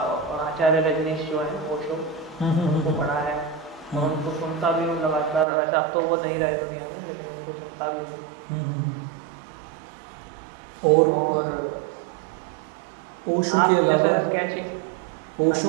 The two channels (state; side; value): drops out; left; at 5.5 s